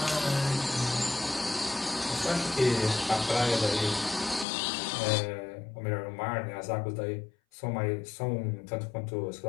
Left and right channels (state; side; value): drops out; right; at 4.5 s